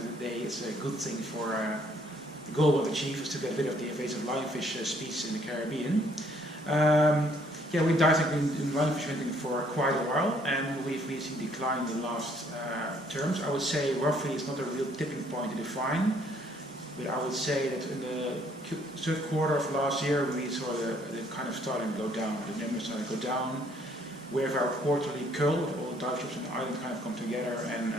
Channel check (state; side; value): normal; both; correlation 0.64